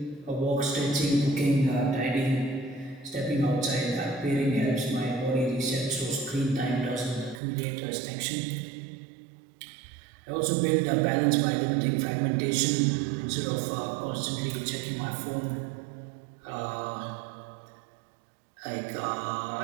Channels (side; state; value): left; drops out; at 7.4 s